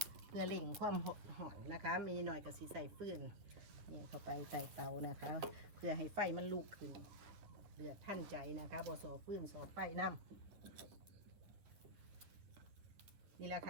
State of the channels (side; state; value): left; late; 9.9 ms